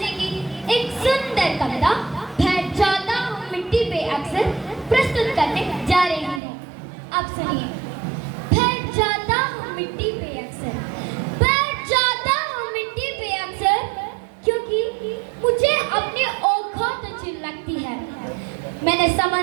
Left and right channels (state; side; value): drops out; left; at 6.4 s